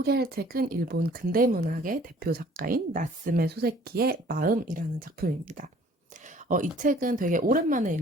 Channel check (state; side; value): normal; both; correlation 0.55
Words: 책은 일본 근대문학의 대표 작가인 나스메 소세키의 마음이라는 작품입니다. 이 책은 되게 오랜만에